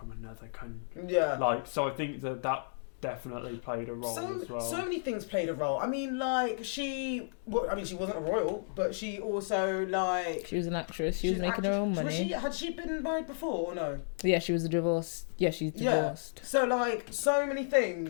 another country? Yeah. Like, so I think that definitely played a role as well. So many things played a role. I mean, like, she wasn't a royal, but she also, like... She was an actress. She was making her own money. Had she been married before or no? Yeah, she was divorced. Yeah, she's divorced. Yeah. So, like, so many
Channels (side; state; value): right; silent; digital silence